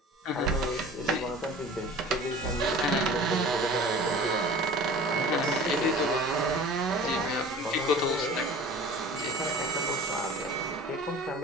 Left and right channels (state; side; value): normal; both; correlation 0.42